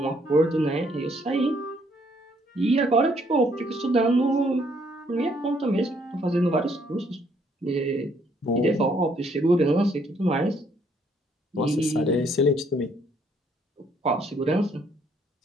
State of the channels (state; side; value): normal; both; correlation 0.67